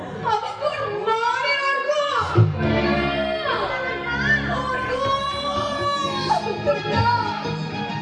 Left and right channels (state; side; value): identical; both; correlation 1.00